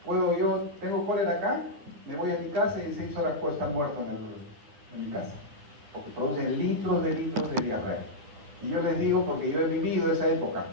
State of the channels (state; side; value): late; left; 9.6 ms